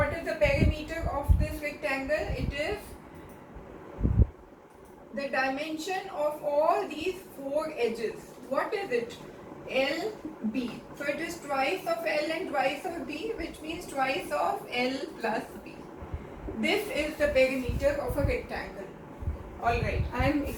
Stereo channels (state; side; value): identical; both; correlation 1.00